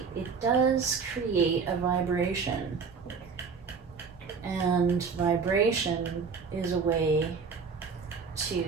it does create a vibration. And vibration is a way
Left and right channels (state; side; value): quieter; left; 5.4 dB